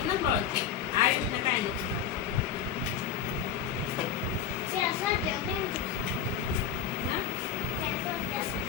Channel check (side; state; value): right; quieter; 8.0 dB